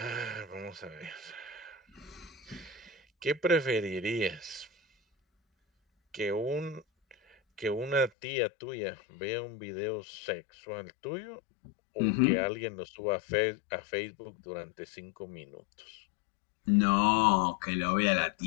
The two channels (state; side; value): drops out; right; at 8.1 s